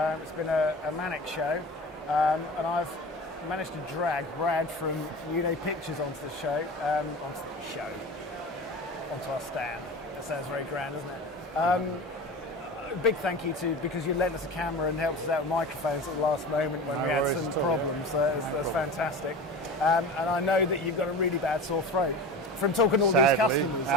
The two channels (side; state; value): both; normal; correlation 0.32